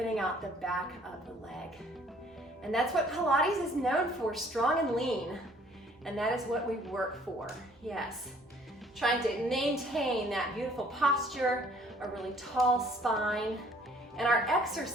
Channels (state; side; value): normal; both; correlation 0.58